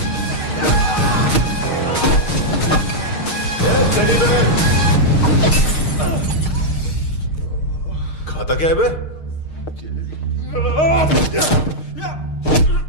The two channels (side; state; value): right; late; 6.5 ms